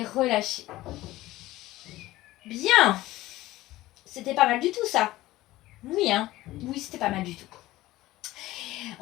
relâchez. Bien. C'était pas mal du tout, ça. Oui, hein. Oui, c'était pas mal du tout.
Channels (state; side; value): quieter; right; 17.0 dB